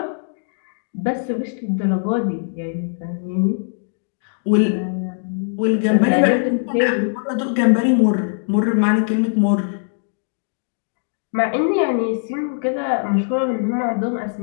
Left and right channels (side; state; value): right; silent; digital silence